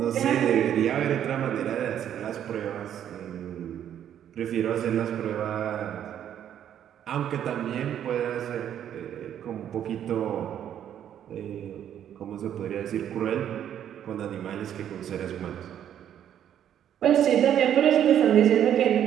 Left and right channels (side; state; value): left; quieter; 10.0 dB